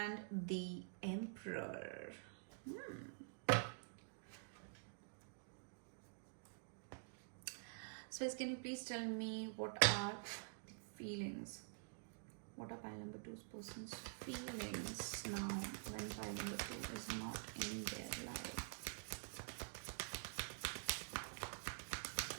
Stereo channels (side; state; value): left; silent; digital silence